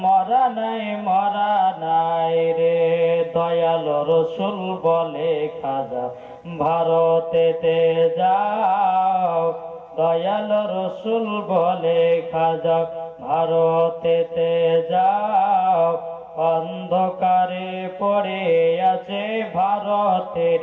মরা নাই রে। দয়াল রসুল বলে খাজা ভারতেতে যাও, দয়াল রসুল বলে খাজা ভারতেতে যাও, অন্ধকারে পড়ে আছে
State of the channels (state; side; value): identical; both; correlation 1.00